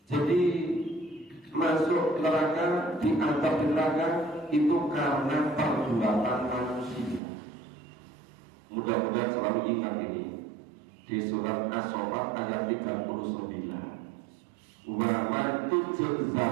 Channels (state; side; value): drops out; left; at 7.2 s